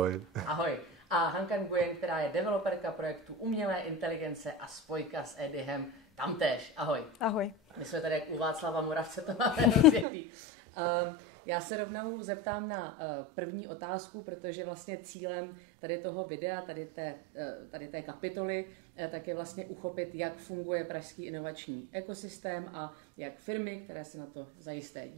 Ahoj. A Hanka Nguyen, která je developerka projektu umělé inteligence a spojka s Edyhem, tamtéž. Ahoj. Ahoj. My jsme tady u Václava Moravce, to máme rozjetý. Já se rovnou zeptám na první otázku, protože vlastně cílem tady toho videa, tady té kapitoly, tak je vlastně uchopit, jak funguje pražský inovační ekosystém a jak firmy, které se na to zajisté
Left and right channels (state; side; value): drops out; left; at 10.1 s